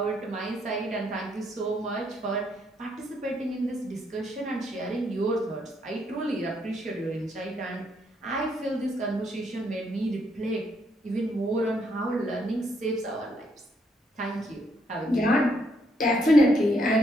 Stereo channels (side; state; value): both; normal; correlation 0.73